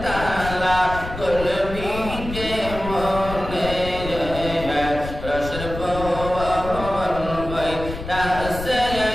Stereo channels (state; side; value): noise; left; rumble, 9 dB below the sound